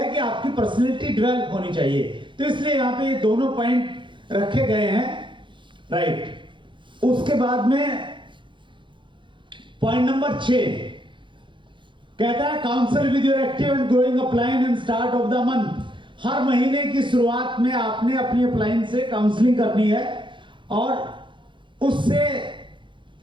कि आपकी पर्सनैलिटी डेवलप होनी चाहिए। तो इसलिए यहां पे ये दोनों पॉइंट रखे गए हैं, राइट। उसके बाद में पॉइंट नंबर 6 कहता है counsel with your active and growing upline and start of the month. हर महीने की शुरुआत में आपने अपनी अपलाइन से काउंसलिंग करनी है और उससे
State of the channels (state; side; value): late; left; 0.23 ms